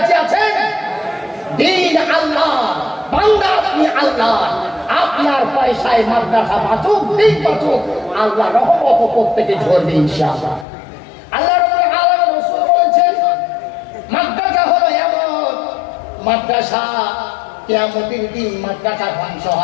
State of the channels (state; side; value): drops out; right; at 10.7 s